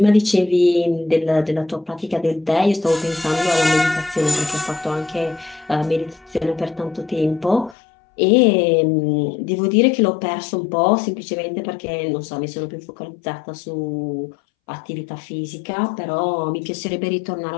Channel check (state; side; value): drops out; right; at 7.8 s